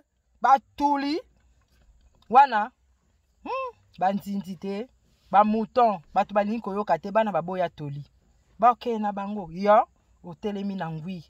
batuli wana banzinzi te ba mouton bato balingi koyoka te bana baboya toli baokee na bango yo otelemi na ngwi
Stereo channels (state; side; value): identical; both; correlation 1.00